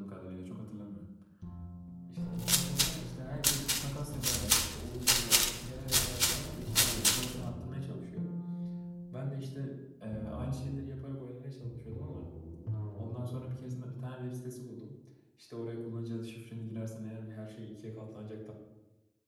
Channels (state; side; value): identical; both; correlation 1.00